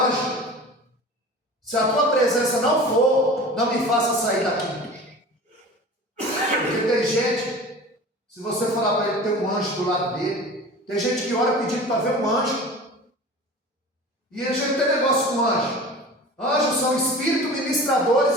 Se a tua presença não for, não me faça sair daqui. Porque tem gente, se você falar para ele, tem um anjo do lado dele. Tem gente que ora pedindo para ver um anjo. E a gente tem negócio com anjo. Anjos são espíritos ministradores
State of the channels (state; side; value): normal; both; correlation 0.38